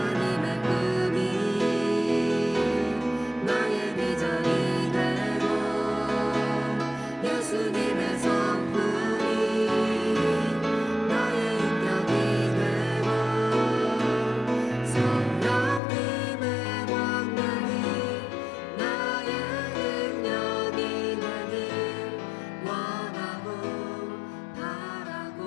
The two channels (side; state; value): right; drops out; at 15.8 s